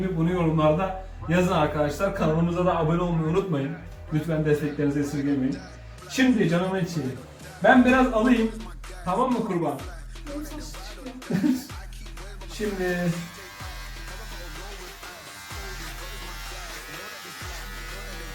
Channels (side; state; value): both; identical; correlation 1.00